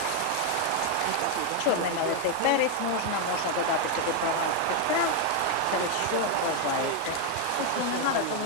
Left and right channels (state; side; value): different; both; correlation 0.01